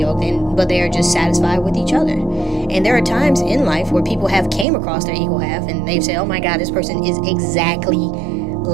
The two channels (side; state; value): left; drops out; at 4.7 s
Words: but they are just satisfied with each other. And there are times in life where people have came across their equal half and they've said, oh my God, this person is exactly